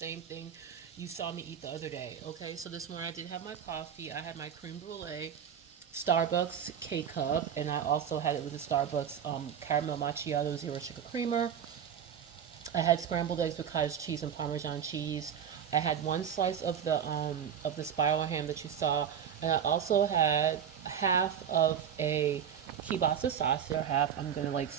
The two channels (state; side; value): quieter; left; 8.4 dB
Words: thing you saw me eat the other day. Okay, so this morning I did have my coffee. I had my creme brulee, Starbucks K-Cup, and I also had it with the Starbucks caramel macchiato zero sugar creamer. I had scrambled eggs with cottage cheese and Parmesan cheese. I had one slice of the spiral ham that you saw, and I also had half of a kielbasa sausage. Half I'm gonna like